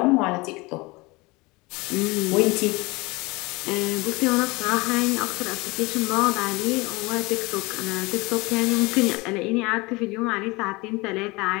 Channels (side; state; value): right; quieter; 24.1 dB